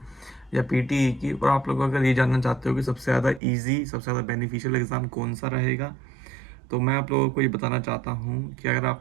या पीटीई की, और आप लोग अगर ये जानना चाहते हो कि सबसे ज़्यादा इजी, सबसे ज़्यादा बेनिफिशियल एग्ज़ाम कौन सा रहेगा, तो मैं आप लोगों को ये बताना चाहता हूँ कि अगर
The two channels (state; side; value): drops out; left; at 3.4 s